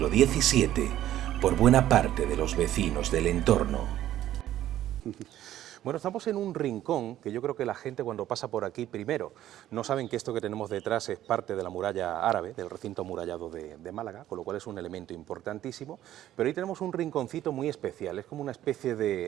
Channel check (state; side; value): quieter; left; 12.8 dB